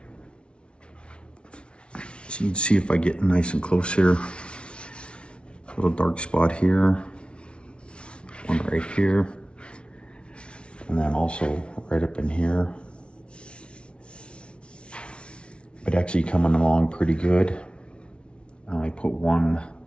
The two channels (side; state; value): right; late; 0.058 ms